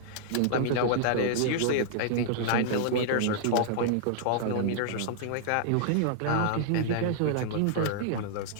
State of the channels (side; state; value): both; different; correlation -0.01